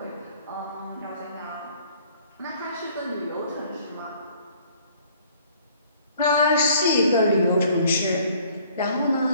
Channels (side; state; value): both; inverted; correlation -0.58